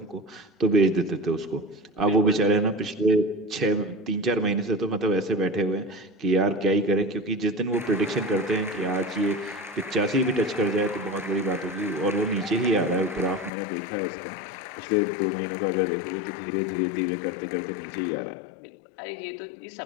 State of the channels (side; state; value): right; drops out; at 13.5 s